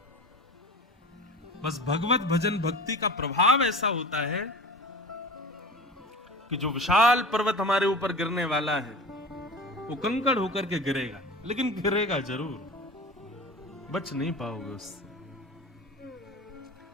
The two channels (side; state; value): both; normal; correlation 0.35